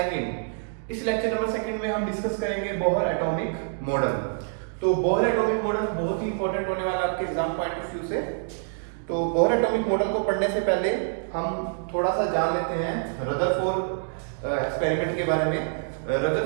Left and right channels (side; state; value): left; silent; digital silence